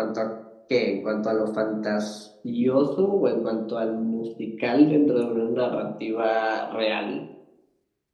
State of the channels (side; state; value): both; identical; correlation 1.00